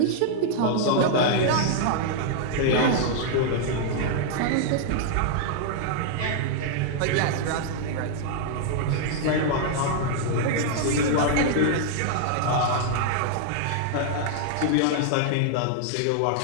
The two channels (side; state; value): both; different; correlation -0.01